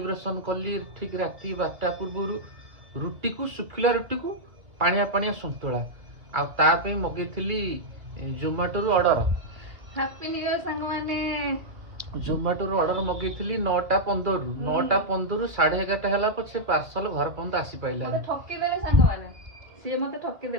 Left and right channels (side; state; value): left; late; 2.5 ms